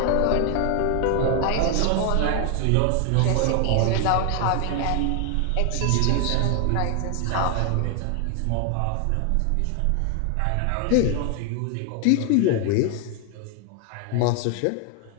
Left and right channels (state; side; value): different; both; correlation 0.00